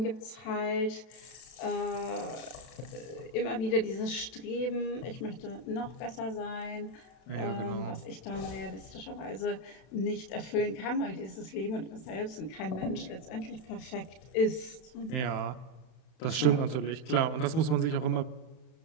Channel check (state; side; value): late; right; 32 ms